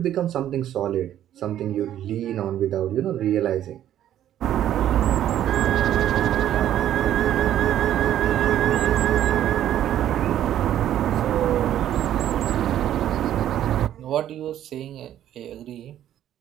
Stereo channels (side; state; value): left; quieter; 11.5 dB